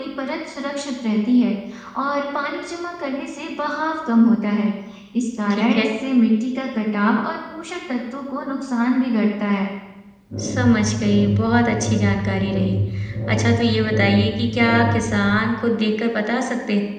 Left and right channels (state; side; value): identical; both; correlation 1.00